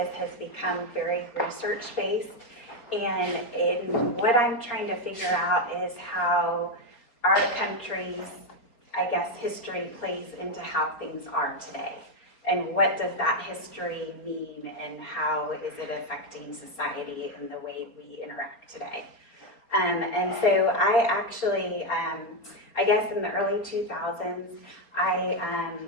has become very research-based. And what I'm trying to figure out is how our country's, I guess, history plays into how things are today. And what does that history mean, and how is it affecting society and the way we interact today? And so I actually, I guess in the early 2000s, I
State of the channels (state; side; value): late; right; 4.4 ms